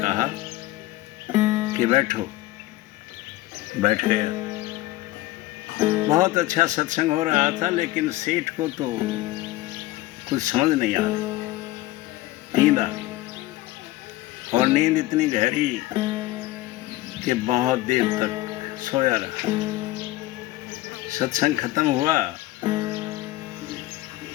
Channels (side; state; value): right; quieter; 17.5 dB